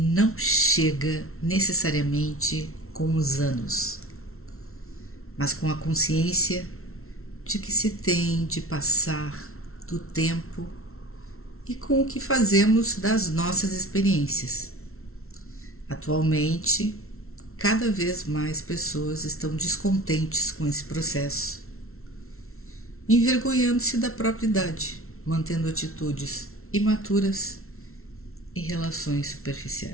chega necessariamente com os anos, mas com a consciência de que se tem de passar do tempo e com o que fazemos das nossas experiências. Atualmente, cada vez mais pessoas estão descontentes com esse processo, envergonhando-se da própria idade, mantendo atitudes imaturas e relações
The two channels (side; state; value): right; late; 0.62 ms